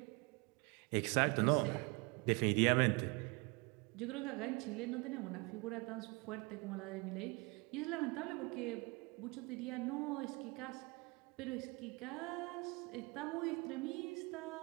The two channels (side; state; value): left; quieter; 28.2 dB